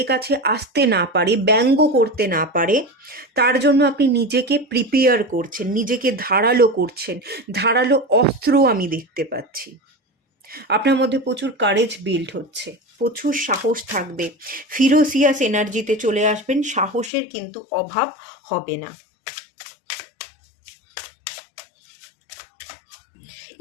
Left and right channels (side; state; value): right; drops out; at 17.1 s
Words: কাছে আসতে না পারে, ব্যঙ্গ করতে না পারে, তার জন্য আপনি নিজেকে প্রিপেয়ার করছেন, নিজেকে ধারালো করছেন, ধারালো অস্ত্র আমি দেখতে পাচ্ছি। আপনার মধ্যে প্রচুর কারেজ বিল্ড হচ্ছে, প্রচুর সাহস থাকবে, ফিরোসিয়াস এনার্জিতে চলে আসবেন, সাহসের কিন্তু অভাব হবে না।